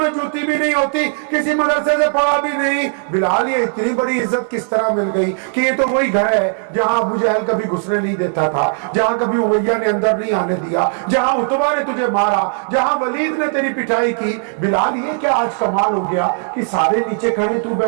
جوتی بھی نہیں ہوتی, کسی مدرسے سے پڑھا بھی نہیں. بلال یہ اتنی بڑی عزت کس طرح مل گئی کہ یہ تو وہی گھر ہے جہاں ابو جہل کبھی گھسنے نہیں دیتا تھا, جہاں کبھی امیہ نے اندر نہیں آنے دیا, جہاں عتبہ نے تجھے مارا, جہاں ولید نے تیری پٹائی کی. بلال یہ کیا آج کمال ہو گیا کہ سارے نیچے کھڑے تو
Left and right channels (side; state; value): left; silent; 60 dB below the other